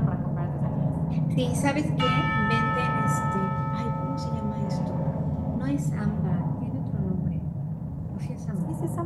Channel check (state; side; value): identical; both; correlation 1.00